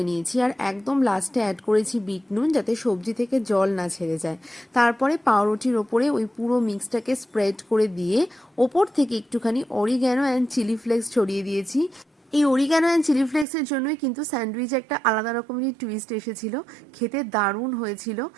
নিয়েছি। আর একদম লাস্টে অ্যাড করেছি বিট নুন, যাতে সবজি থেকে জল না ছেড়ে যায়। তারপরে পাউরুটির ওপরে ওই পুরো মিক্সটাকে স্প্রেড করে দিয়ে ওপর থেকে একটুখানি অরিগ্যানো অ্যান্ড চিলি ফ্লেক্স ছড়িয়ে দিয়েছি। এই অরিগ্যানো অ্যান্ড চিলি ফ্লেক্সের জন্যই কিন্তু স্যান্ডউইচ একটা আলাদা রকমেরই টুইস্ট এসেছিল। খেতে দারুণ হয়েছিল।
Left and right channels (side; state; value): left; drops out; at 13.5 s